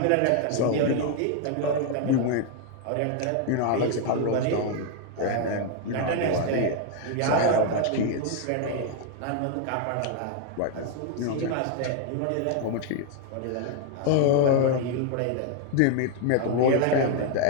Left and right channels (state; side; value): different; both; correlation 0.00